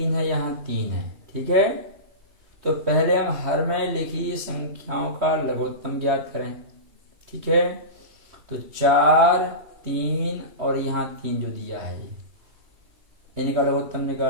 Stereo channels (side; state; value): left; late; 3.1 ms